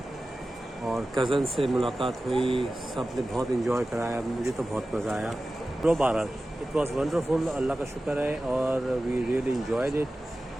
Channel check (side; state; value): both; normal; correlation 0.95